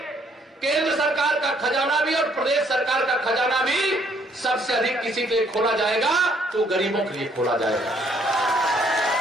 केंद्र सरकार का खजाना भी और प्रदेश सरकार का खजाना भी सबसे अधिक किसी के लिए खोला जाएगा तो गरीबों के लिए खोला जाएगा।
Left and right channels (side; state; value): both; normal; correlation 0.66